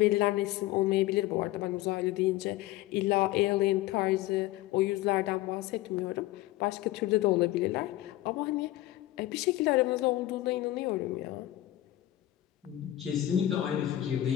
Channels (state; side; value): quieter; right; 15.5 dB